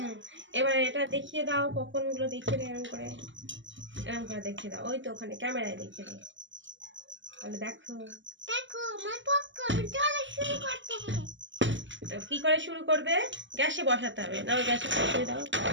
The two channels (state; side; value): late; left; 0.54 ms